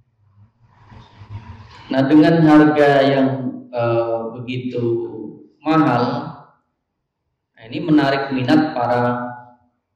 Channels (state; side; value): identical; both; correlation 1.00